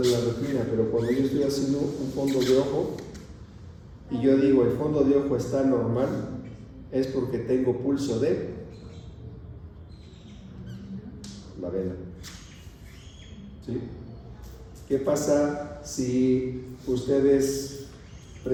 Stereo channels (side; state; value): both; identical; correlation 1.00